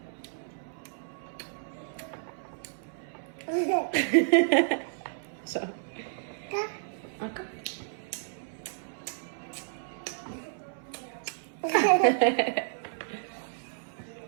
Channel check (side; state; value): left; silent; 57 dB below the other